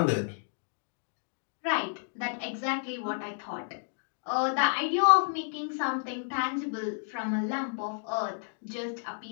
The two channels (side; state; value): right; silent; digital silence